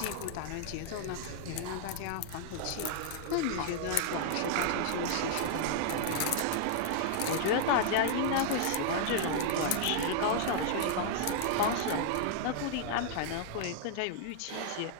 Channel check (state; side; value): different; both; correlation -0.01